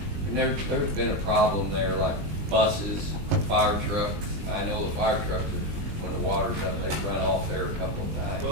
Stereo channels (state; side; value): late; left; 20 ms